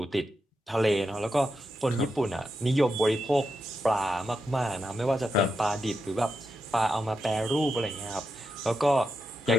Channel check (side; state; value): both; normal; correlation 0.86